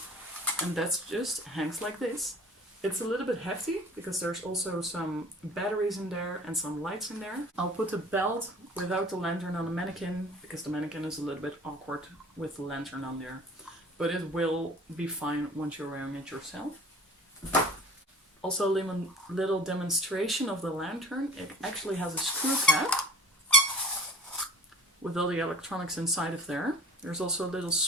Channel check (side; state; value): both; normal; correlation 0.44